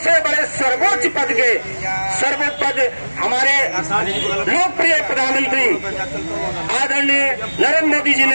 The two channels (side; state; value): both; inverted; correlation -1.00